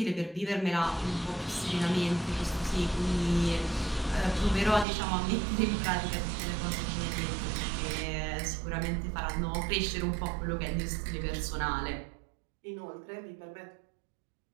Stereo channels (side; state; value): left; drops out; at 4.9 s